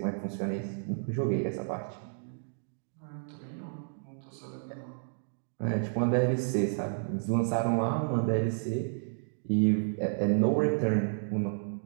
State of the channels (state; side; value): silent; left; digital silence